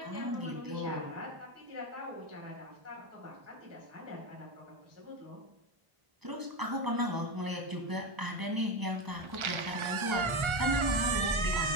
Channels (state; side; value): late; left; 1.3 ms